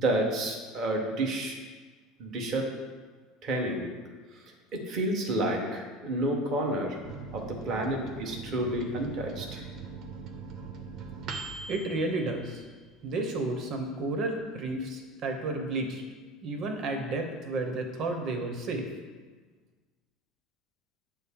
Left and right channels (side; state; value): both; normal; correlation 0.33